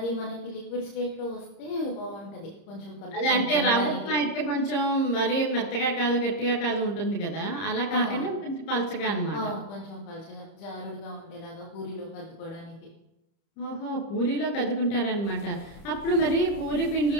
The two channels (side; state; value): right; late; 30 ms